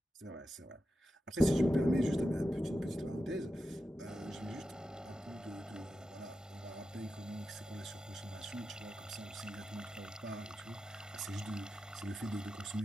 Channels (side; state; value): both; normal; correlation 0.90